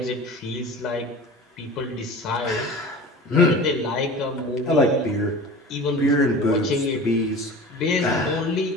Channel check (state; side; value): normal; both; correlation 0.37